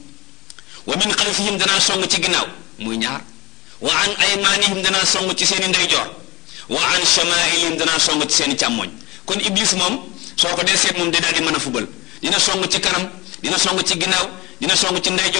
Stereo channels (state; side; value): quieter; right; 21.5 dB